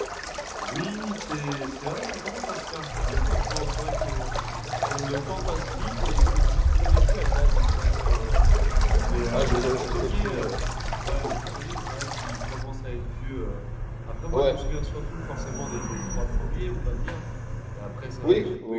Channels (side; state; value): both; identical; correlation 1.00